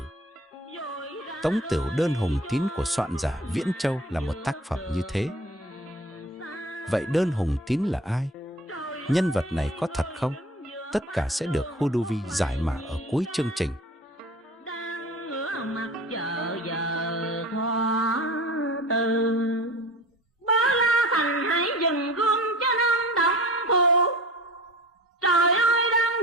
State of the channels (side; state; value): both; normal; correlation 0.39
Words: Tống Tửu Đơn Hùng Tín của soạn giả Viễn Châu là một tác phẩm như thế. Vậy Đơn Hùng Tín là ai? Nhân vật này có thật không? Tất cả sẽ được Huduvi giải mã ở cuối chương trình. Trời ơi, đang